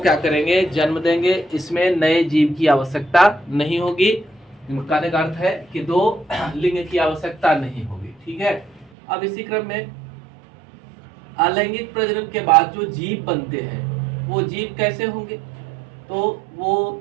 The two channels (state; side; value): drops out; left; at 8.9 s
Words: करेंगे, जन्म देंगे। इसमें नए जीव की आवश्यकता नहीं होगी। कहने का अर्थ है कि दो लिंग की आवश्यकता नहीं होगी। ठीक है, अब इसी क्रम में अलैंगिक प्रजनन के बाद जो जीव बनते हैं वो जीव कैसे होंगे, तो